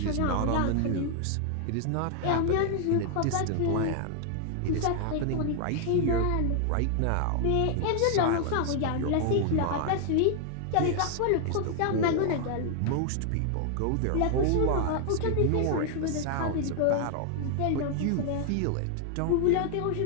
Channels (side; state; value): both; different; correlation 0.00